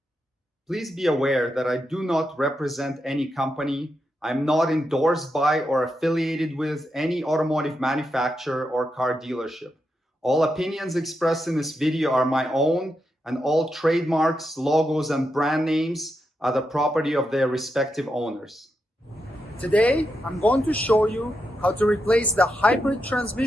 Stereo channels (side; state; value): both; normal; correlation 0.85